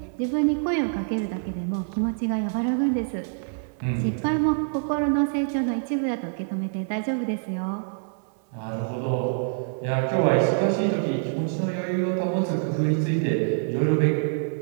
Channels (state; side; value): silent; left; digital silence